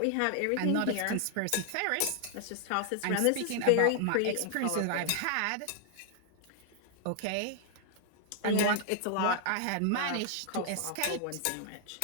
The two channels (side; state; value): both; different; correlation 0.00